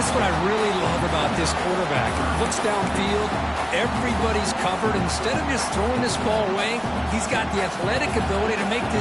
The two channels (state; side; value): identical; both; correlation 1.00